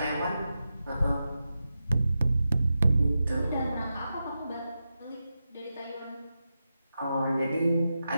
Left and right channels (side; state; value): both; inverted; correlation -0.90